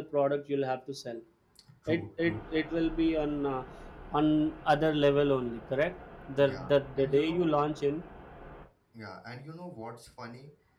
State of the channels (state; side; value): identical; both; correlation 1.00